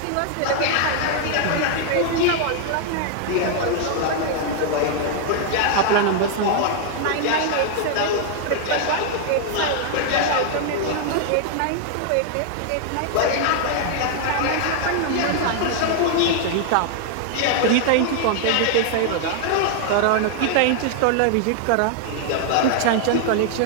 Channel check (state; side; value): different; both; correlation 0.00